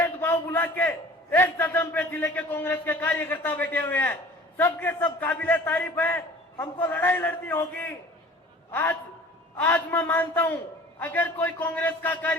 भुला के एक साधन पे जिले के कांग्रेस के कार्यकर्ता बैठे हुए हैं। सबके सब काबिले तारीफ है। हमको लड़ाई लड़नी होगी। आज मैं मानता हूं, अगर कोई कांग्रेस का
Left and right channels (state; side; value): normal; both; correlation 0.46